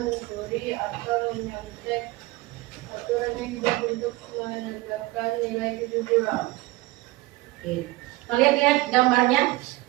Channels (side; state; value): left; quieter; 20.2 dB